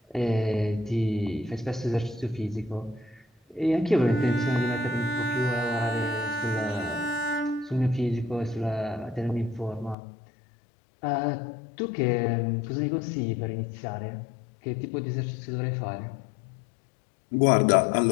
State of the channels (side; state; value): right; drops out; at 10.0 s